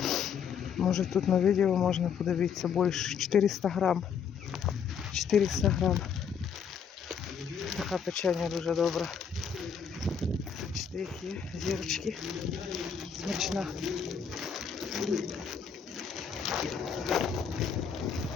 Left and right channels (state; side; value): quieter; right; 7.0 dB